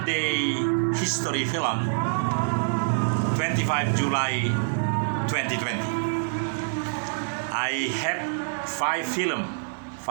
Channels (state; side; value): silent; left; 61 dB below the other